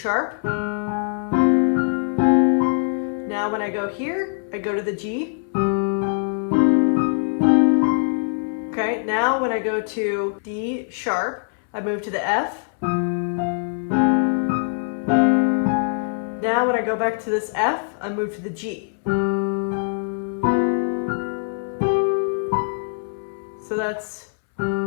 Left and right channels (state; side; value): silent; right; 64 dB below the other